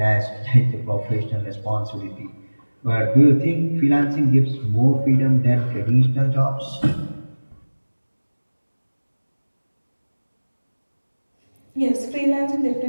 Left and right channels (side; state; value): both; inverted; correlation -1.00